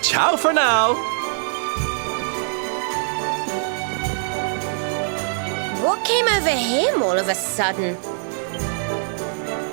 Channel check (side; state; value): left; silent; 64 dB below the other